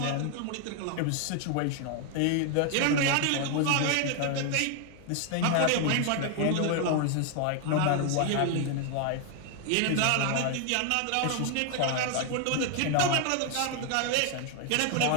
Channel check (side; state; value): both; different; correlation 0.00